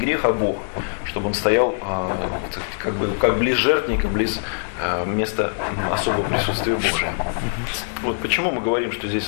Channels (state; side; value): silent; right; 55 dB below the other